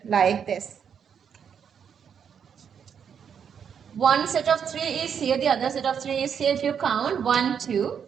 like this. One set of 3 is here, the other set of 3 is here. If you count 1, 2,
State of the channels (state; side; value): quieter; left; 7.6 dB